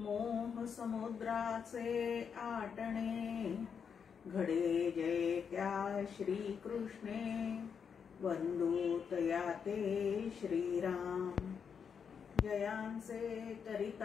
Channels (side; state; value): right; quieter; 6.8 dB